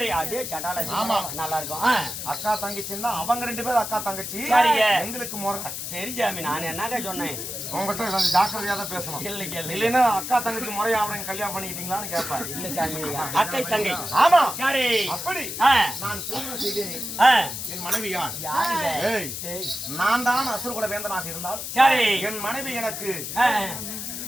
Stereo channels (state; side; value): noise; left; hiss, 6 dB below the sound